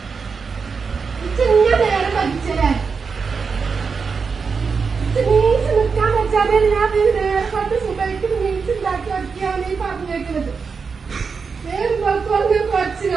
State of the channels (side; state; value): left; quieter; 5.3 dB